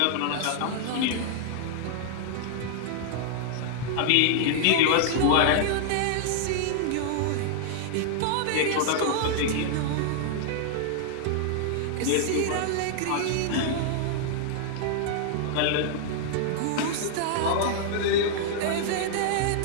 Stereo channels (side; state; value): both; different; correlation -0.01